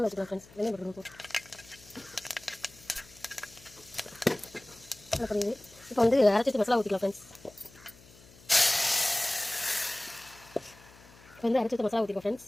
வச்சுக்கலாம் ஃப்ரெண்ட்ஸ். வெந்தயம் போட்டுக்கலாம். புரியுது. இப்போ வந்து அரைச்சி மசாலா ஊற்றிக்கலாம் ஃப்ரெண்ட்ஸ். இப்போ வந்து அரைச்சி மசாலா ஊற்றிக்கலாம்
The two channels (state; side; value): noise; left; hum, 23 dB below the sound